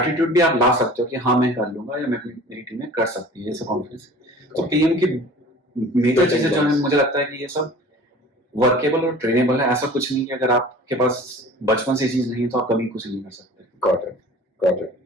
भी आप ला सकते हो कि हाँ मैं कर लूंगा या मेरी टीम में कर सकती है, ऐसा कॉन्फिडेंस। तो पीएम की मेजर चीजें जो है मुझे लगता है कि ये सब वर्केबल और ट्रेनेबल है। ऐसा कुछ नहीं कि अगर आपके पास बचपन से चीज नहीं है तो आप कभी कुछ नहीं कर सकते। Got it.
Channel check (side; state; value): both; normal; correlation 0.44